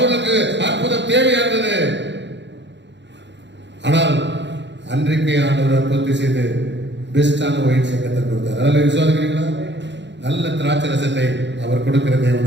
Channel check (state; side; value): late; left; 0.52 ms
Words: அற்புதம் தேவையா இருந்தது. ஆனால் அன்றைக்கே ஆண்டவர் அற்புதத்தை செய்து பெஸ்டான ஒயின் சங்கத்தை கொடுத்தார். அதில் விசுவாசிக்கிறீங்களா? நல்ல திராட்சை ரசத்தை அவர் கொடுக்கிற